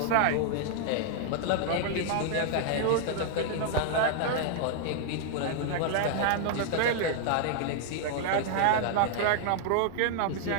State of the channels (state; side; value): different; both; correlation -0.01